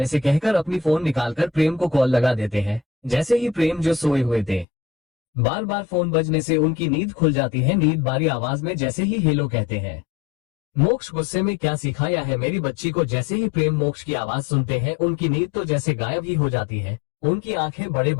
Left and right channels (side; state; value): right; drops out; at 4.7 s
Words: से कहकर अपनी फोन निकालकर प्रेम को कॉल लगा देते हैं। जैसे ही प्रेम जो सोए हुए थे, बार बार फोन बजने से उनकी नींद खुल जाती है। नींद बारी आवाज में जैसे ही हेलो कहते हैं। मोक्ष गुस्से में क्या सिखाया है मेरी बच्ची को। जैसे ही प्रेम मोक्ष की आवाज सुनते हैं, उनकी नींद तो जैसे गायब ही हो जाती है। उनकी आंखें बड़े